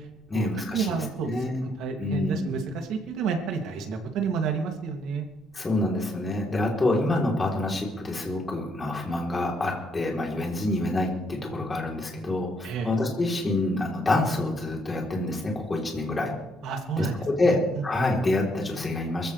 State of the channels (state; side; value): noise; right; rumble, 28 dB below the sound